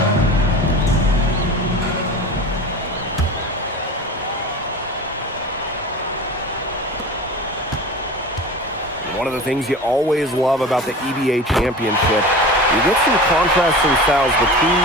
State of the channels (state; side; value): normal; both; correlation 0.34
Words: One of the things you always love about the EBA Championship, you get some contrasting styles between